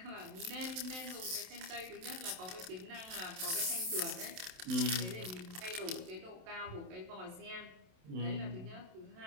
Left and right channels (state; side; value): late; left; 27 ms